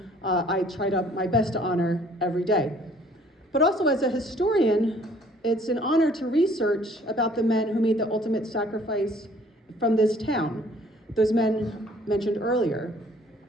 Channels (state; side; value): normal; both; correlation 0.57